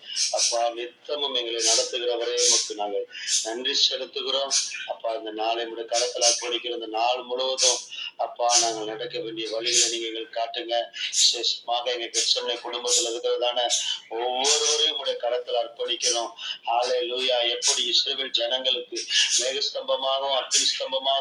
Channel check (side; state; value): both; identical; correlation 1.00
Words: அப்பா, நித்தமும் எங்களை நடத்துகிறவரே உமக்கு நாங்கள் நன்றி செலுத்துகிறோம் அப்பா. இந்த நாளை முடி கடத்தலா படிக்கிற இந்த நாள் முழுவதும் அப்பா நாங்கள் நடக்க வேண்டிய வழிகளை நீங்க எங்களுக்கு காட்டுங்க. விசேஷமாக எங்க கிறிஸ்தவ குடும்பத்தில் இருக்கிறதான ஒவ்வொருவரையும் உடைய கடத்தல அர்ப்பணிக்கிறோம். ஹல்லேலூயா. எப்படி இஸ்ரவேல் ஜனங்களுக்கு மேகஸ்தம்பமாகவும் அக்னி